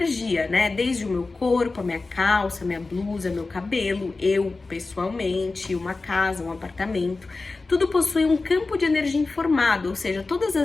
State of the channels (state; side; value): quieter; right; 3.6 dB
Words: né? Desde o meu corpo, a minha calça, a minha blusa, meu cabelo, eu pessoalmente, uma casa, um apartamento. Tudo possui um campo de energia informado, ou seja, todas